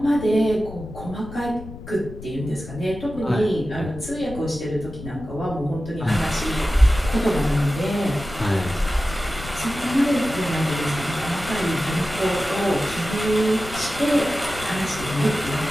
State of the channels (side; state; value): left; noise; rumble, 13 dB below the sound